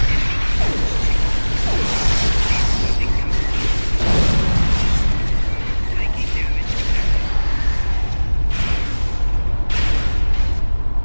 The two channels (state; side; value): inverted; both; correlation -1.00